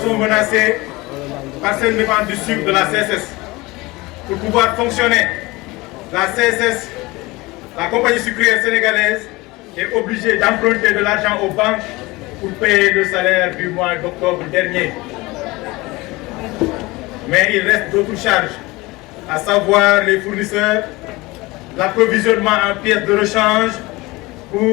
menacés par cette vente du sucre de la CSS. Pour pouvoir fonctionner, la CSS, la compagnie sucrière sénégalaise, est obligée d'emprunter de l'argent aux banques pour payer le salaire du mois d'octobre dernier. Mais il reste d'autres charges, à savoir les fournisseurs, l'approvisionnement en pièces de rechange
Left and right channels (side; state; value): right; quieter; 22.0 dB